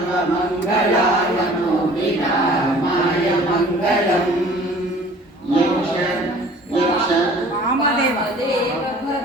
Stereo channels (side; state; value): both; normal; correlation 0.49